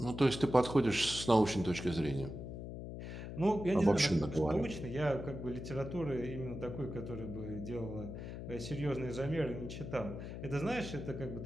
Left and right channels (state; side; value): noise; left; hum, 8 dB below the sound